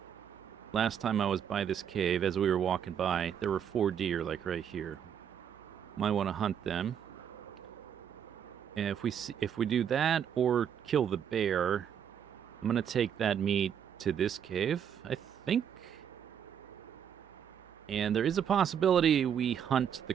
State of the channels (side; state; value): left; quieter; 8.6 dB